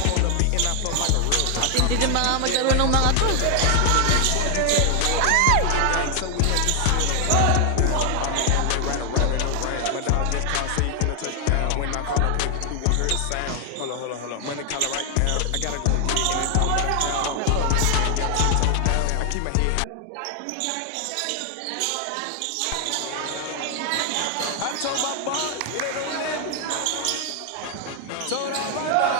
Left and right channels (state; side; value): different; both; correlation 0.00